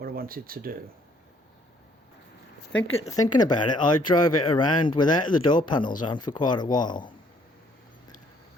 I wanted to do. Thinking about it, I drove it around without the door panels on for quite a while.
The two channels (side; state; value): both; normal; correlation 0.64